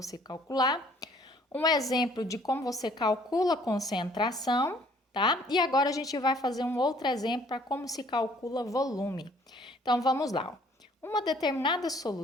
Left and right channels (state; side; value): normal; both; correlation 0.59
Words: calcular, um exemplo de como você calcula a concentração, tá? E agora a gente vai fazer um outro exemplo para como se calcula volume. Então, vamos lá. Uma determinada